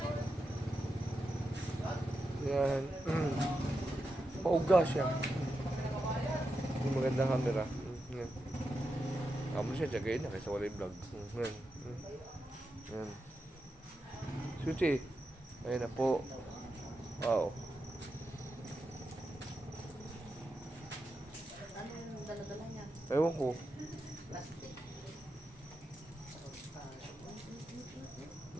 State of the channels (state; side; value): normal; both; correlation 0.88